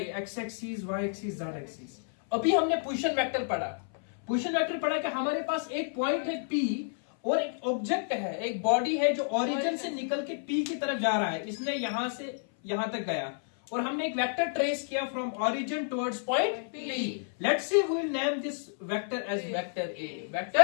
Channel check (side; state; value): right; silent; 57 dB below the other